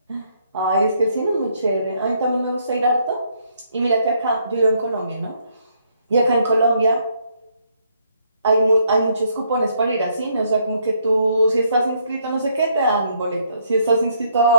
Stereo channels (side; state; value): both; inverted; correlation -0.71